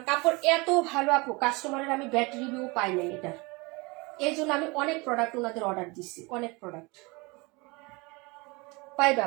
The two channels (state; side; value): quieter; left; 26.2 dB